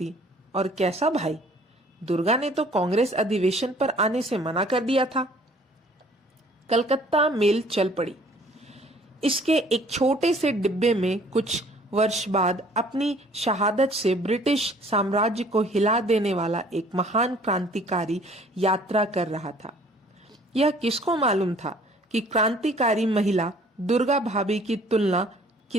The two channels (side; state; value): both; normal; correlation 0.55